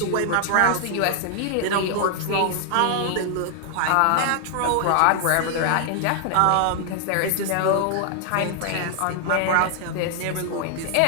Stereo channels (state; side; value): different; both; correlation 0.00